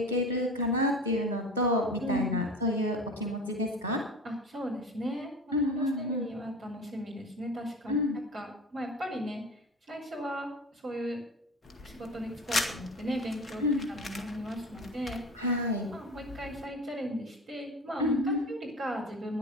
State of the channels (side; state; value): both; normal; correlation 0.33